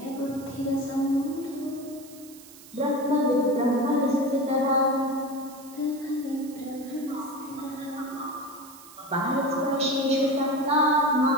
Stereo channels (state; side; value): noise; right; hiss, 20 dB below the sound